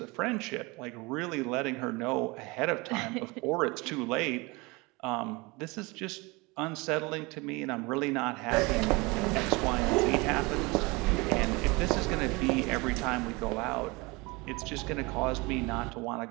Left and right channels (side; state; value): left; quieter; 25.2 dB